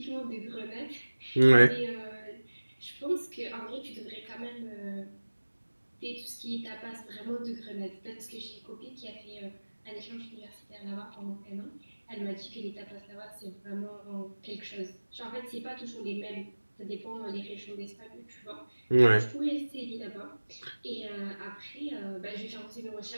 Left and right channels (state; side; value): inverted; both; correlation -1.00